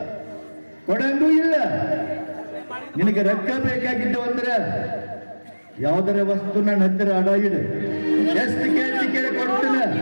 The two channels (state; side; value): inverted; both; correlation -1.00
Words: ಕೊಡಂಗೂ ಇಲ್ಲ. ನಿನಗೆ ರೊಕ್ಕ ಬೇಕಾಗಿದ್ದು ಅಂದ್ರೆ ಯಾವ್ದಾರ ವಸ್ತು ನನ್ನ ಹತ್ತಿರ ಅಡ ಇಡು, ಎಷ್ಟು ಕೇಳಿ ಕೊಡ್ತೀನಿ.